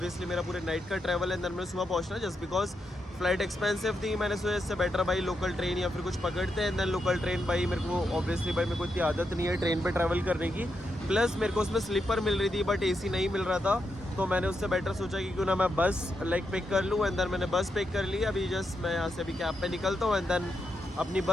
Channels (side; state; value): both; normal; correlation 0.84